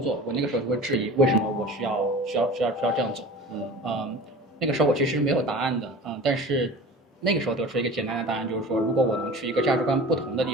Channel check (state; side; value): normal; both; correlation 0.37